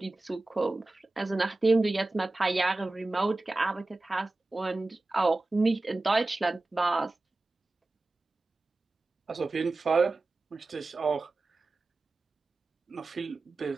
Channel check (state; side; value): quieter; left; 3.1 dB